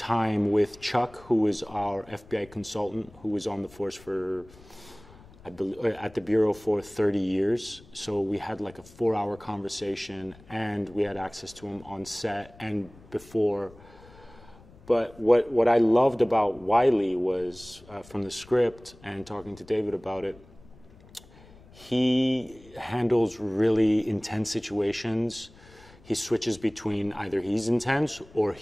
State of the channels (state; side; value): noise; left; rumble, 23 dB below the sound